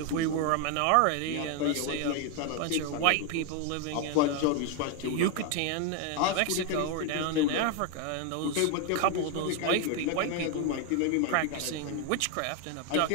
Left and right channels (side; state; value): both; different; correlation 0.01